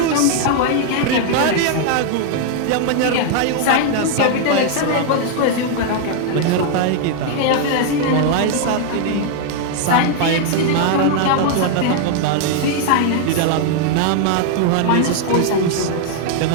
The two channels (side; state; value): both; different; correlation 0.00